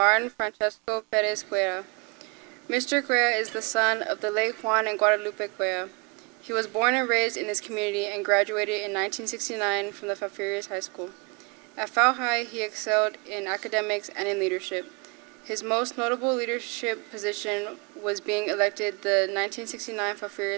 Francesco Perez Cuera. Mr. Cuera is the son of the late Juan and Guadalupe Cuera. He was born and raised in this community and graduated in 1969 from the Falfurrias High School. At Foul High, he excelled in academics and in leadership. His most notable leadership position was being elected the 1969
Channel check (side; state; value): left; quieter; 30.8 dB